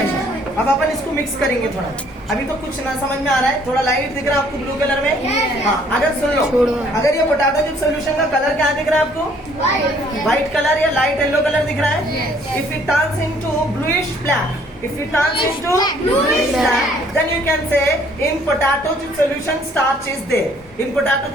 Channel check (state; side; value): normal; both; correlation 0.61